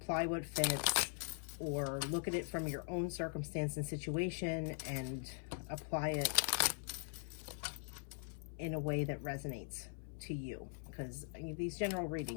what fits, or look at it from your own circumstance and situation and apply it in a way that resonates to you. Because these general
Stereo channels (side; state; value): right; silent; 50 dB below the other